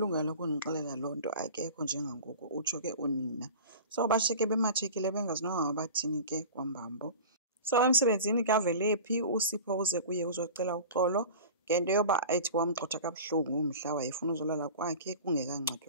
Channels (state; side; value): inverted; both; correlation -0.36